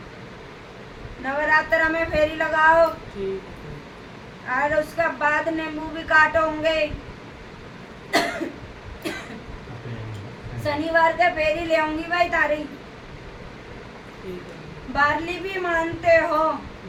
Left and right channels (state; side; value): identical; both; correlation 1.00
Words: नवरात्र में फेरी लगाओ। ठीक है। और उसके बाद नींबू भी काटोगे। शनिवार के फेरी ले आऊंगी भाई तारी। ठीक है। बारली भी मानते हो?